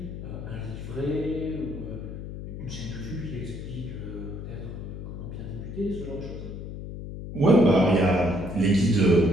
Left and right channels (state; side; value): noise; left; hum, 8 dB below the sound